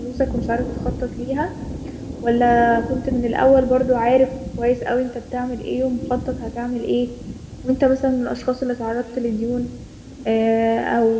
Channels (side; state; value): both; identical; correlation 1.00